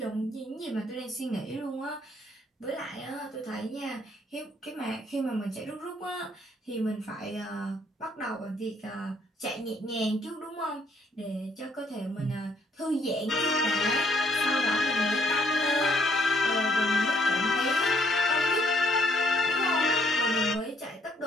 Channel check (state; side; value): normal; both; correlation 0.67